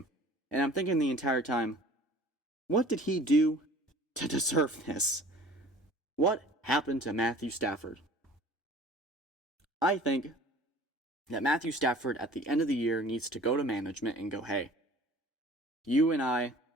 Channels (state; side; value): normal; both; correlation 0.47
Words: And I'm thinking the entire time, what did he do to deserve this? What happened to Matthew Stafford? I think that Matthew Stafford at the end of the year needs to go to management and go, hey, you and